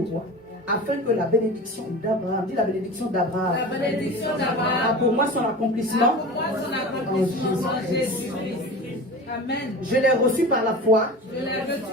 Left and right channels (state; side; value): normal; both; correlation 0.33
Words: afin que la bénédiction d'Abraham, dis la bénédiction d'Abraham, La bénédiction d'Abraham a pour moi son accomplissement pour moi son accomplissement en Jésus-Christ. Amen. Je l'ai reçu par la foi, Je l'ai